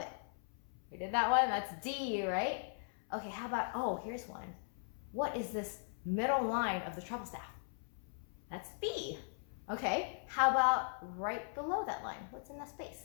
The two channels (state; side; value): silent; right; 52 dB below the other